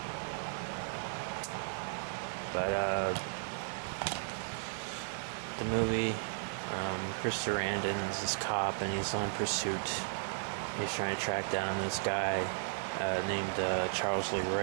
But the movie, Chris Sarandon's this cop and he's on pursuit. He's trying to track down this guy named Charles Lee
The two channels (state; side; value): silent; left; digital silence